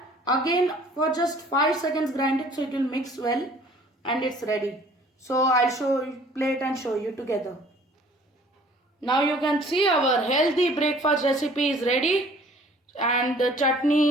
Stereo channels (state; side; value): normal; both; correlation 0.53